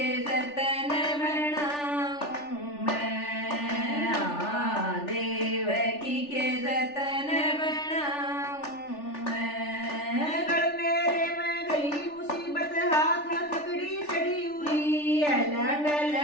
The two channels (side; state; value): right; late; 3.4 ms